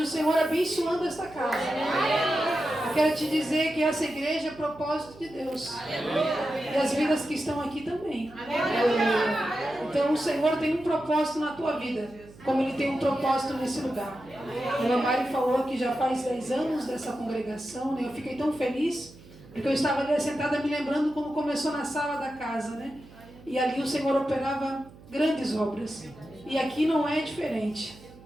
o Senhor abençoando esta casa. Eu quero te dizer que essa igreja é propósito de Deus. E as vidas que estão aqui também. Então o Senhor tem um propósito na tua vida, como Ele tem um propósito nesse lugar. A irmã Mari falou que já faz 10 anos dessa congregação, né? Eu fiquei tão feliz, porque eu estava ali sentada me lembrando como começou na sala da casa, né? E ali o Senhor operava grandes obras. E aqui não é diferente.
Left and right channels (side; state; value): right; noise; hum, 21 dB below the sound